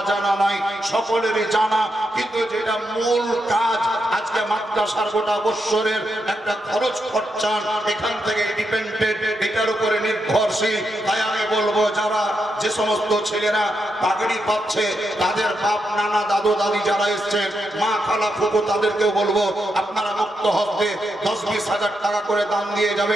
নাই, সকলেরই জানা। কিন্তু যেটা মূল কাজ, আজকে মাদ্রাসার গোটা বছরের একটা খরচ খরচান এখান থেকে ডিপেন্ডেন্ট, এটার উপরে নির্ভরশীল। তাই আমি বলবো, যারা যে সমস্ত ছেলেরা পাগড়ি পাচ্ছে, তাদের বাপ নানা দাদু দাদি যারা এসছেন, মা খালা ফুফু, তাদেরকেও বলবো আপনারা মুক্ত হস্তে 10-20 হাজার টাকা করে দান দিয়ে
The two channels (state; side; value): normal; both; correlation 0.83